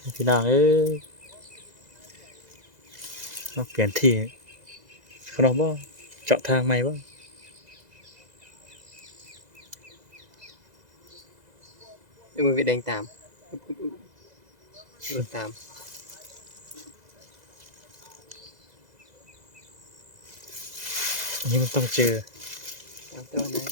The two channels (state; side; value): late; left; 2.0 ms